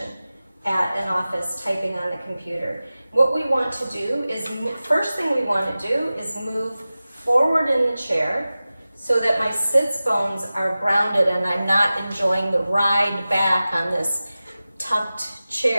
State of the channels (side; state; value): both; inverted; correlation -0.96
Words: at an office typing on the computer. What we want to do is, first thing we want to do is move forward in the chair so that my sits bones are grounded and I'm not enjoying the ride back on this tucked